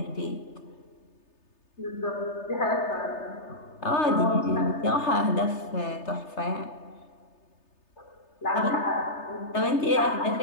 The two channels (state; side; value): late; right; 3.3 ms